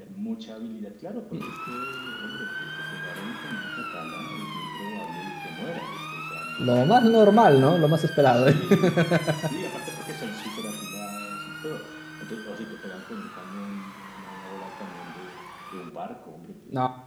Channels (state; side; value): identical; both; correlation 1.00